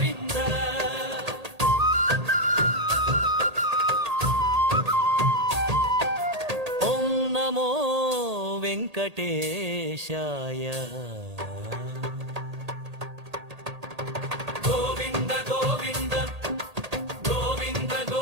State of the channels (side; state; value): left; late; 1.8 ms